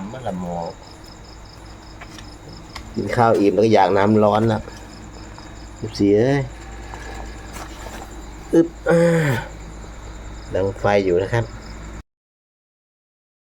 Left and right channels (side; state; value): both; identical; correlation 1.00